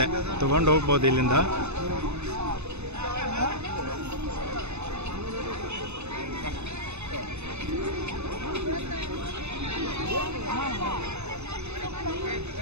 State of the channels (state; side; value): late; left; 0.81 ms